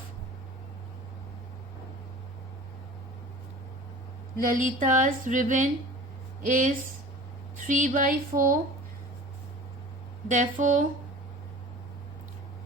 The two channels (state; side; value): normal; both; correlation 0.41